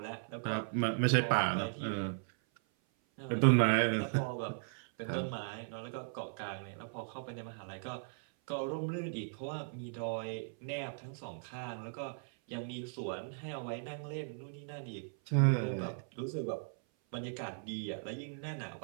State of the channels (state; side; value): silent; left; 53 dB below the other